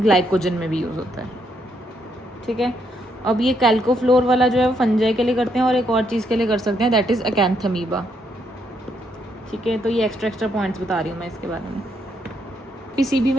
ग्लाइकोजन में भी यूज़ होता है। ठीक है, अब ये कैल्कोफ्लोर वाला जो है वो फंजाई के लिए करते हैं, और एक और चीज़ के लिए कर सकते हैं, दैट इज़ अकैंथमीबा। ठीक है, तो ये एक्स्ट्रा पॉइंट्स बता रही हूँ मैं इसके बारे में। PCB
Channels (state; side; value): normal; both; correlation 0.75